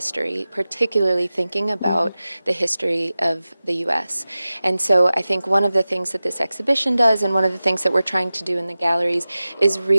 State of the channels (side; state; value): both; inverted; correlation -0.96